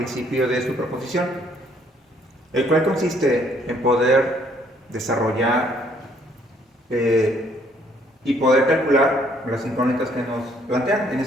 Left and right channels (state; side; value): normal; both; correlation 0.65